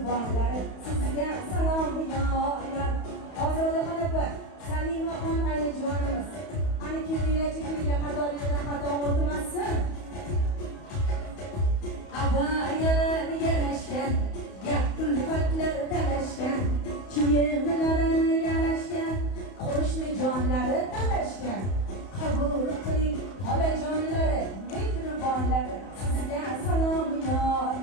sizga salom yor. Ozodaxon opa, Salimaxon ayajonimiz. Ana kelinglar, qadoringizdan xato o'tmasin. Abayalar yarashgan, gap kulfatlar talashgan, kiyimlari yarashgan, qo'shni jonlari talashgan. Qabul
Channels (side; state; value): right; late; 31 ms